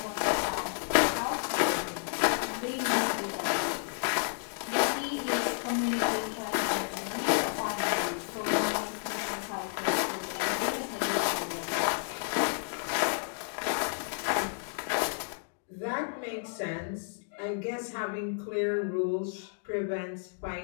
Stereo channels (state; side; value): silent; right; digital silence